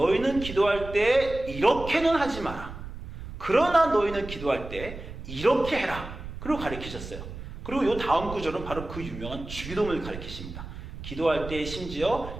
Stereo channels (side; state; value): right; noise; rumble, 11 dB below the sound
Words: 기도할 때 이렇게는 하지 마라. 그러나 너희는 기도할 때 이렇게 해라. 그리고 가르치셨어요. 그리고 이 다음 구절은 바로 그 유명한 주기도문을 가르치십니다. 기도할 때